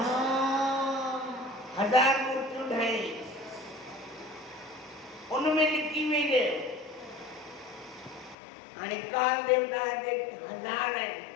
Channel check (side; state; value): right; drops out; at 8.3 s